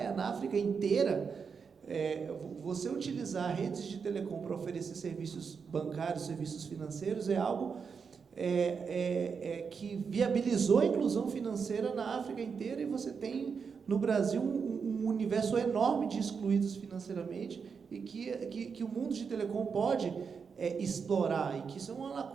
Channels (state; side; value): quieter; left; 5.9 dB